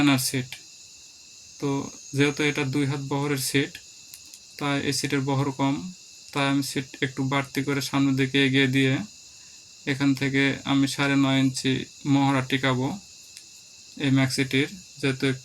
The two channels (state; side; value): identical; both; correlation 1.00